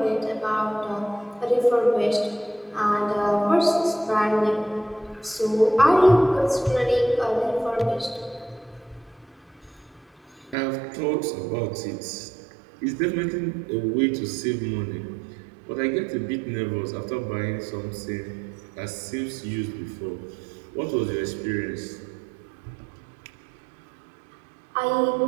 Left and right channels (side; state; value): left; drops out; at 10.6 s